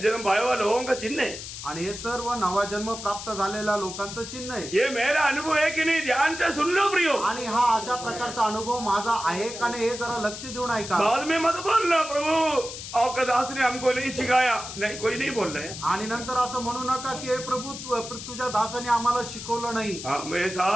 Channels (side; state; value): left; noise; hiss, 10 dB below the sound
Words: जन्म पाया हुआ लोगों का चिन्ह है। आणि हे सर्व नवा जन्म प्राप्त झालेल्या लोकांचं चिन्ह आहे। ये मेरा अनुभव है कि नहीं, ध्यान से सुन लो प्रियो। आणि हा अशा प्रकारचा अनुभव माझा आहे का नाही हे जरा लक्ष देऊन ऐका। बाद में मत बोलना प्रभु आपका दास ने हमको नहीं सिखाया, नहीं कोई नहीं बोल रहे हैं। आणि नंतर असं म्हणू नका की हे प्रभू तुझ्या दासाने आम्हाला शिकवलं नाही। मैं